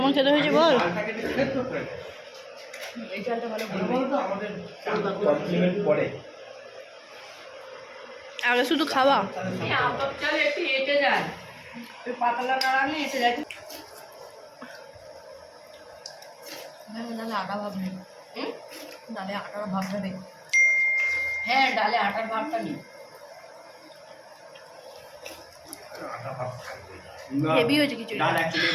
খেতে হয়েছে বল? চালটাকে একটু সেদ্ধ করে দেয়। এই চালটা ভালো বলতো আমাদের কমপ্লিমেন্ট পড়ে আগে শুধু খাওয়া। আতপ চালে একটু এঁটে যায়, ওই পাতলা নাড়ালে এঁটে যায়। ডালে আটা ভাব নেই, ডালে আটার ভাবটা নেই। হ্যাঁ, ডালে আটার ভাবটা নেই। আটা ভাব থাকবে হেভি হয়েছে খিচুড়ি। ডাল অ্যাকচুয়ালি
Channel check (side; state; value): both; identical; correlation 1.00